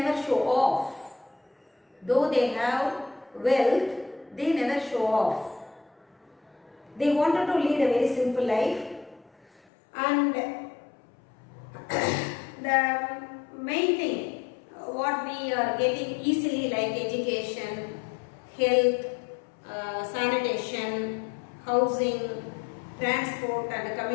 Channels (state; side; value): drops out; right; at 9.6 s